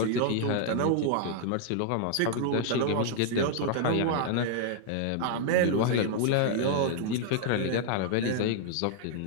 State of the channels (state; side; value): different; both; correlation -0.01